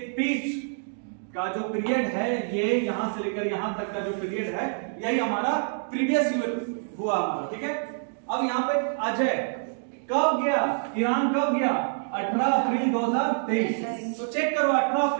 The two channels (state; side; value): silent; left; digital silence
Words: बीच का जो पीरियड है, ये यहां से लेकर यहां तक का जो पीरियड है, यही हमारा प्रीवियस ईयर हुआ हमारा, ठीक है। अब यहाँ पे अजय कब गया, ईरान कब गया, 18 अप्रैल 2023। तो चेक करो 18